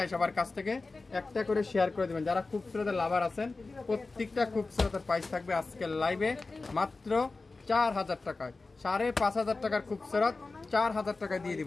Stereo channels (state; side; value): quieter; right; 3.7 dB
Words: সবার কাছ থেকে, একটা করে শেয়ার করে দেবেন। যারা খুবসুরতের লাভার আছেন প্রত্যেকটা খুবসুরতের প্রাইস থাকবে আজকের লাইভে মাত্র 4000 টাকায়। 5500 টাকার খুবসুরত 4000 টাকায় দিয়ে